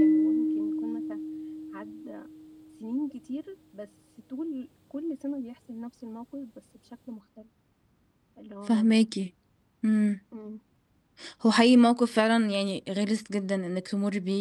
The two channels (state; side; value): identical; both; correlation 1.00